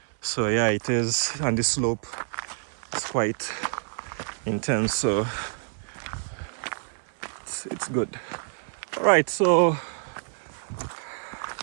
So yeah, it is, and the slope is quite intense. So it's good. All right, so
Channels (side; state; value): left; silent; 60 dB below the other